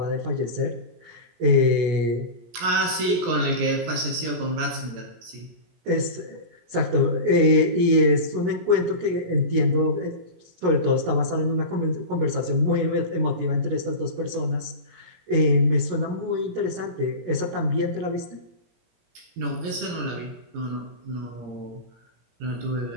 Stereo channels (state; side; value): late; left; 17 ms